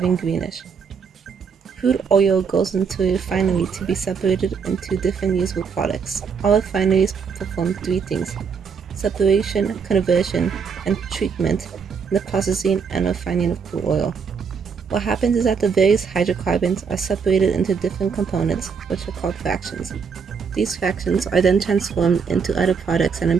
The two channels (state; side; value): quieter; left; 6.0 dB